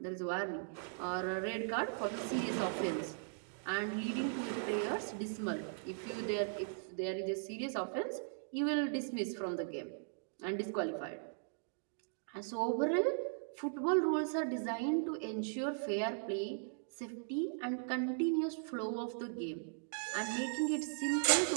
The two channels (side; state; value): left; silent; digital silence